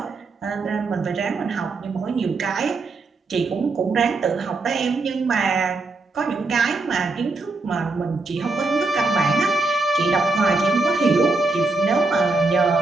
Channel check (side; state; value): left; quieter; 3.5 dB